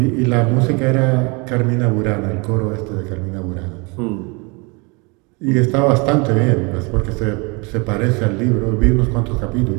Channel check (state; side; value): quieter; left; 29.8 dB